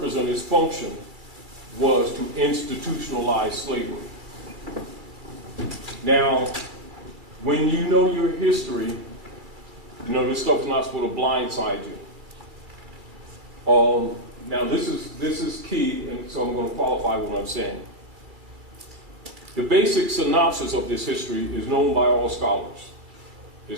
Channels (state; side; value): late; left; 2.3 ms